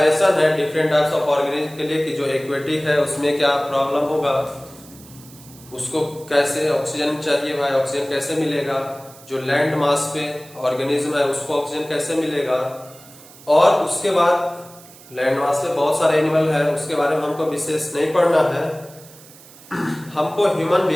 है डिफरेंट टाइप्स ऑफ ऑर्गेनिज्म के लिए कि जो एक्वेटिक है उसमें क्या प्रॉब्लम होगा, उसको कैसे ऑक्सीजन चाहिए भाई, ऑक्सीजन कैसे मिलेगा, जो लैंड मास पे ऑर्गेनिज्म है उसको ऑक्सीजन कैसे मिलेगा, और उसके बाद लैंड मास पे बहुत सारे एनिमल है उसके बारे में हमको विशेष नहीं पढ़ना है, हमको ह्यूमन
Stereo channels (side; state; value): right; noise; hiss, 21 dB below the sound